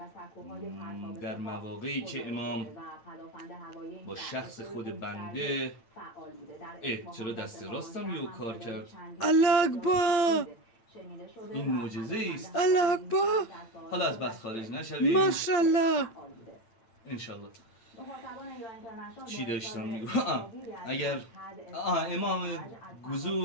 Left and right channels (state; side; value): late; right; 8.8 ms